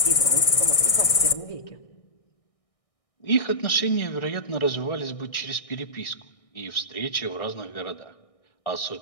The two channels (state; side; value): late; right; 1.6 ms